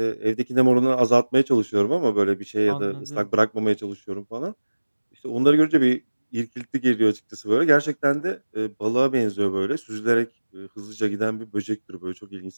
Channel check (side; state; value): both; inverted; correlation -1.00